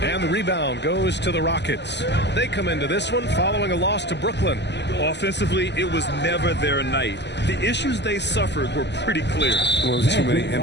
And the rebound goes to the Rockets. They come into this one following a loss to Brooklyn. Offensively, it was never their night. The issues they suffered were pretty clear. Well, there's too many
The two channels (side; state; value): right; late; 0.50 ms